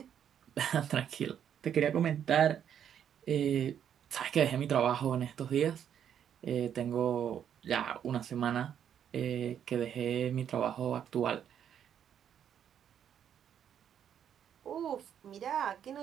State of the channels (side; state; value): left; quieter; 9.1 dB